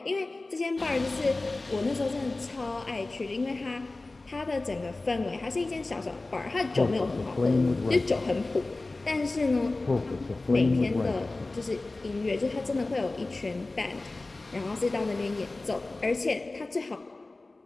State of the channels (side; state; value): right; quieter; 3.2 dB